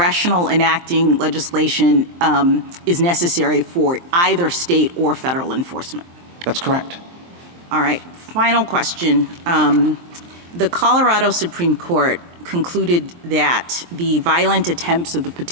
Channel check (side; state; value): left; late; 23 ms